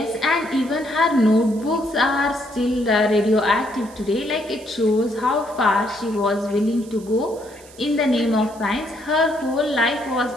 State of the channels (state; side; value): noise; right; hiss, 22 dB below the sound